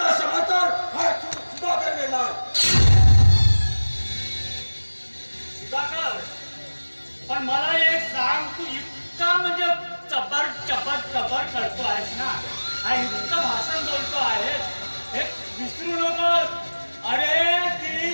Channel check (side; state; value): both; inverted; correlation -1.00